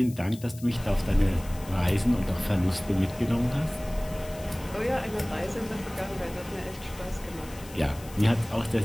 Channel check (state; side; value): noise; left; hiss, 19 dB below the sound